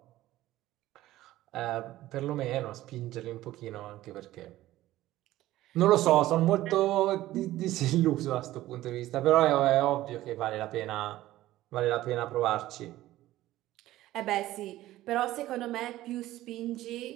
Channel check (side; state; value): left; quieter; 15.5 dB